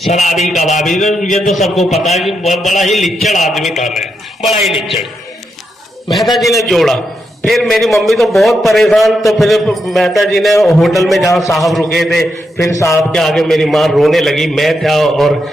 कबाबी, ये तो सबको पता है कि बड़ा ही लिच्चड़ आदमी था मैं, बड़ा ही लिच्चड़। मेहता जी ने जोड़ा, फिर मेरी मम्मी तो बहुत परेशान। तो फिर मेहता जी ने होटल में जहाँ साहब रुके थे, फिर साहब के आगे मेरी माँ रोने लगी। मैं था और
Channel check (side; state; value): both; normal; correlation 0.83